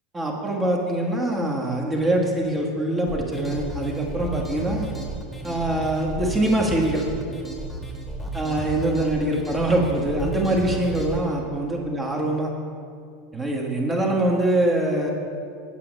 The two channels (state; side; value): normal; both; correlation 0.47